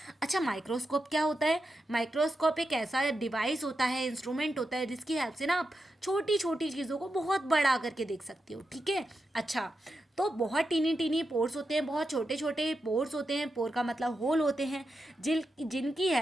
अच्छा, माइक्रोस्कोप क्या होता है, माइक्रोस्कोप एक ऐसा डिवाइस होता है, इंस्ट्रूमेंट होता है जिसकी हेल्प से ना आप छोटी छोटी चीज़ों को बहुत बड़ा करके देख सकते हो, ठीक है। अच्छा, तो बहुत टीनी पोर्स होते हैं, बहुत छोटे छोटे पोर्स होते हैं, पोर का मतलब होल होते हैं, जिनकी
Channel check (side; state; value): both; normal; correlation 0.88